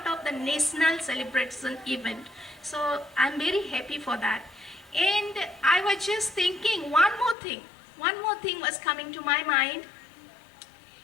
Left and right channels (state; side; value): drops out; right; at 7.4 s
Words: of the national celebration event. So I'm very happy for that. And I was just thinking one more thing was coming to my mind.